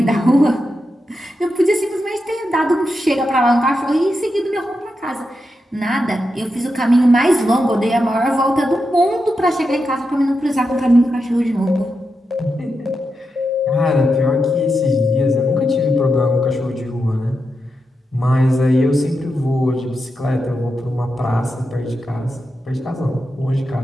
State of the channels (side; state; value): both; normal; correlation 0.87